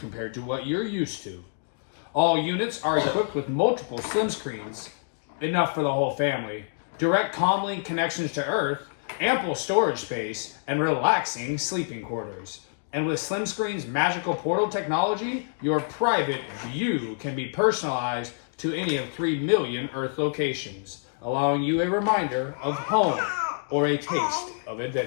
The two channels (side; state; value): right; silent; digital silence